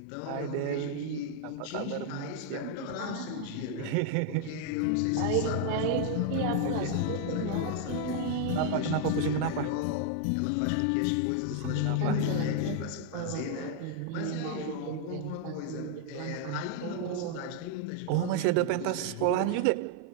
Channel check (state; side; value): different; both; correlation 0.00